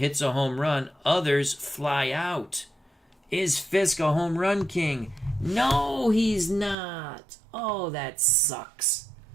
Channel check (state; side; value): drops out; left; at 6.8 s